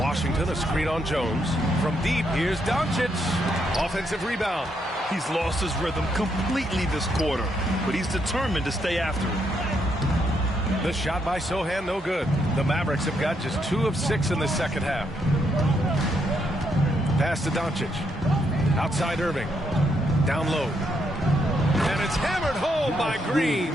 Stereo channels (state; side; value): normal; both; correlation 0.77